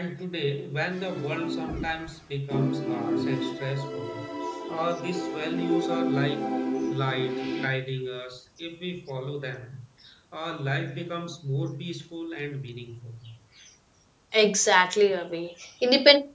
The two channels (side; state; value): both; identical; correlation 1.00